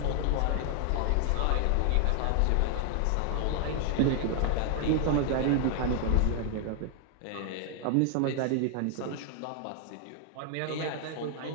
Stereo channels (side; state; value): both; different; correlation 0.00